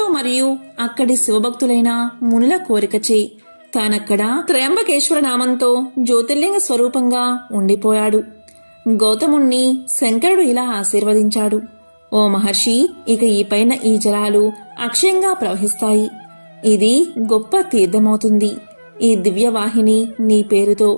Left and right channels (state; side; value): inverted; both; correlation -1.00